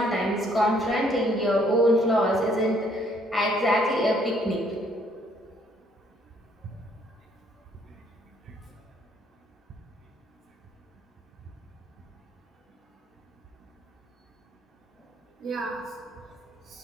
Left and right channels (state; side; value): normal; both; correlation 0.65